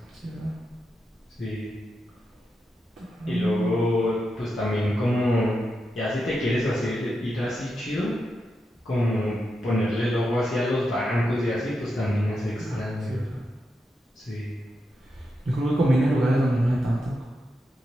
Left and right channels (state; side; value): normal; both; correlation 0.86